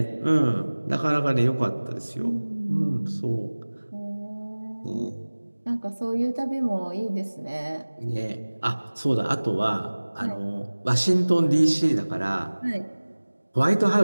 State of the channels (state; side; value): inverted; both; correlation -1.00